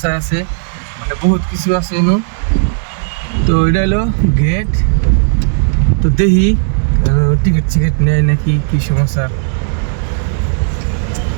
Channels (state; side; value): silent; left; digital silence